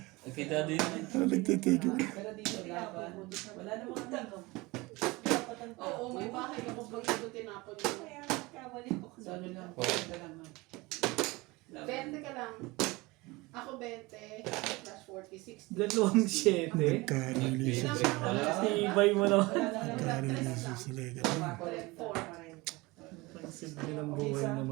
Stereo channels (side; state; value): left; quieter; 22.7 dB